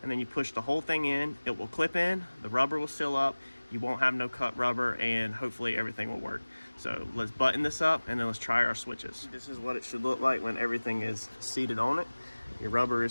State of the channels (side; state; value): both; inverted; correlation -1.00